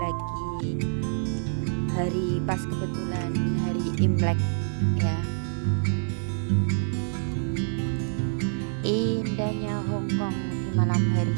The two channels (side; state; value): left; silent; 56 dB below the other